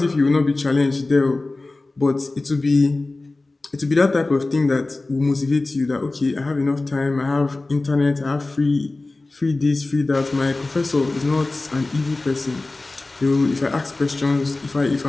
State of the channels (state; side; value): quieter; right; 3.2 dB